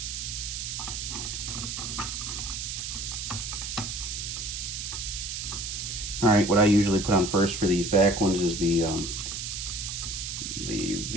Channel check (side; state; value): right; noise; hiss, 4 dB below the sound